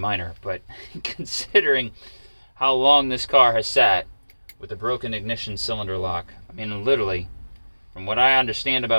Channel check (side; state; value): both; inverted; correlation -1.00